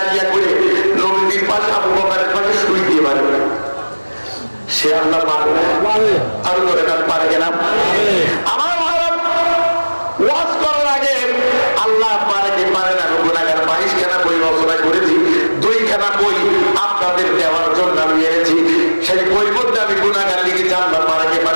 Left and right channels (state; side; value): inverted; both; correlation -1.00